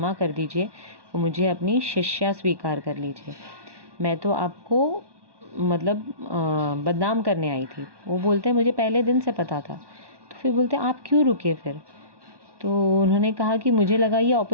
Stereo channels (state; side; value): late; left; 1.1 ms